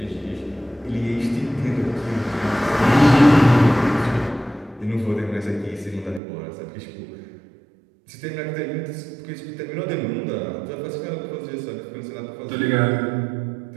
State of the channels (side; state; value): left; drops out; at 6.2 s